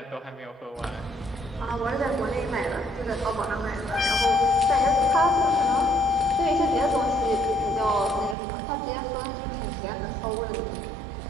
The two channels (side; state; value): left; drops out; at 8.3 s